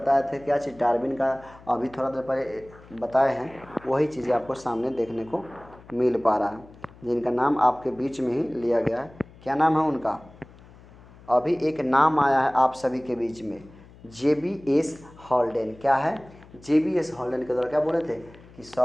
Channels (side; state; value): left; noise; hum, 23 dB below the sound